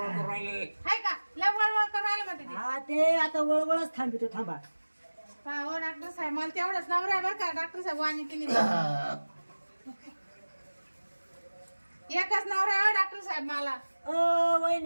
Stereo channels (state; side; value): inverted; both; correlation -1.00